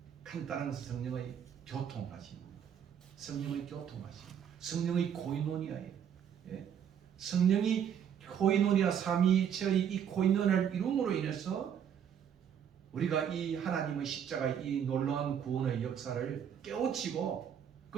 간단한 성령의 교통하심, 성령의 교통하심, 성령의 코이노니아예요. 성령이 코이노니아, 삼위일체의 이 코이노니아를 이룸으로 인해서 우리가 이 하나님의 십자가의 이 놀라운 구원의 역사를 깨우치고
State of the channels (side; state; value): left; quieter; 8.6 dB